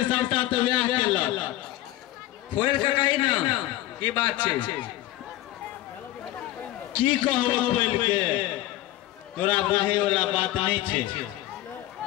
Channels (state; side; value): quieter; right; 15.6 dB